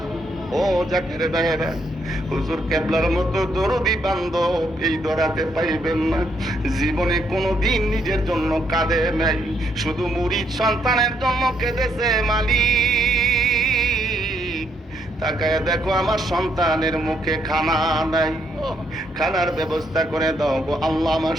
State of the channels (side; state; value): both; normal; correlation 0.74